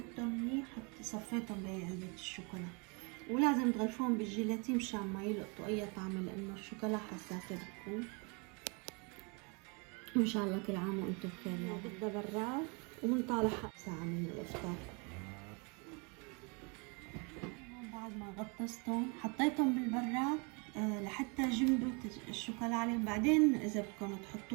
منيح، صفيتهم بهي علبة الشوكولا. ولازم تغلفوهم بالجيلاتين مشان ما يلقطوا اي طعم، لانه الشوكولا حساسة بتكون. وان شاء الله كل عام وانتم بخير. يعني بدها براد ومنطالع ساعة من الافطار. بعد ما غطستهم حطيتهم بالبراد لحتى جمدوا الشوكولا عليهم. بعدين اذا بدكم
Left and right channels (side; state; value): left; quieter; 32.5 dB